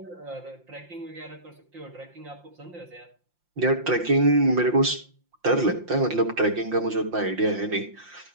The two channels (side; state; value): left; late; 5.7 ms